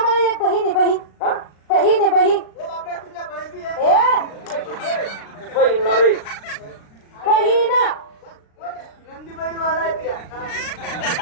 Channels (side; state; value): right; late; 36 ms